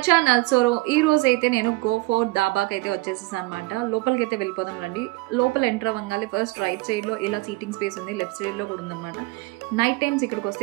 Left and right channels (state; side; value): quieter; left; 22.5 dB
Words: channel. So ఈ రోజు అయితే నేను గో ఫోర్ దాబాకి అయితే వచ్చేసేసాను అనమాట. లోపలికి అయితే వెళ్ళిపోదాం రండి. లోపల ఎంటర్ అవ్వగానే ఫస్ట్ రైట్ సైడ్లో ఇలా సీటింగ్ స్పేస్ ఉంది, లెఫ్ట్ సైడ్లో కూడా ఉందన్నమాట. నైట్ టైమ్స్ ఇక్కడికి